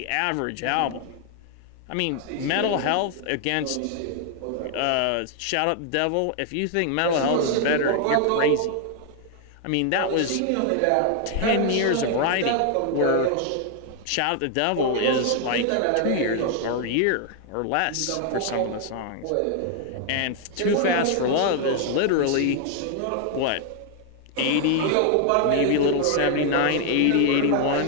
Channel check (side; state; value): both; different; correlation 0.00